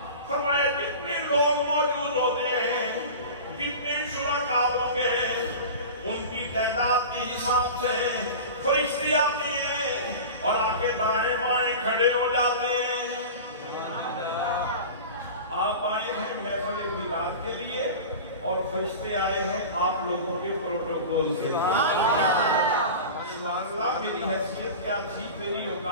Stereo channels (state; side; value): inverted; both; correlation -0.32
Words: فرمایا جتنے لوگ موجود ہوتے ہیں، جتنے شرکاء ہوں گے، ان کی تعداد کے حساب سے فرشتے آتے ہیں اور آگے دائیں بائیں کھڑے ہو جاتے ہیں. آپ آئے ہیں محفل میلاد کے لیے اور فرشتے آئے ہیں آپ لوگوں کے پروٹوکول کے لیے. سبحان اللہ. میری حیثیت کیا تھی، میری